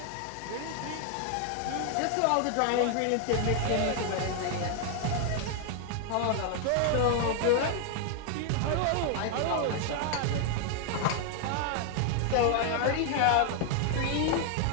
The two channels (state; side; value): different; both; correlation 0.00